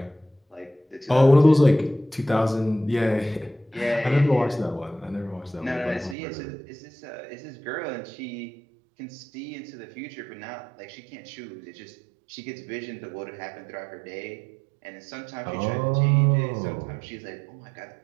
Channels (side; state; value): left; drops out; at 6.2 s